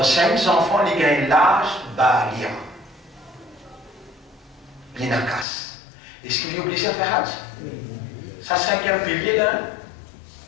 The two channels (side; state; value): right; drops out; at 5.5 s